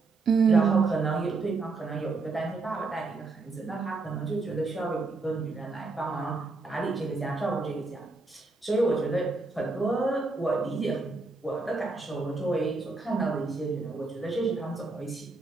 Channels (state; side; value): quieter; left; 3.7 dB